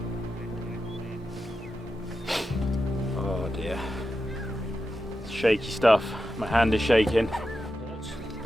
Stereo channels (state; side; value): normal; both; correlation 0.90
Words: Oh dear. It's shaky stuff. My hand is shaking.